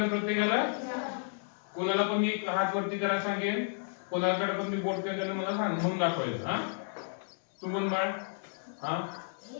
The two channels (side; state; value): right; silent; 56 dB below the other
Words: प्रत्येकाला कोणाला पण मी हात वरती करा सांगेन कोणाकडे पण मी बोट केलं मला सांग म्हणून दाखवायचं हा तू म्हण बाळ हा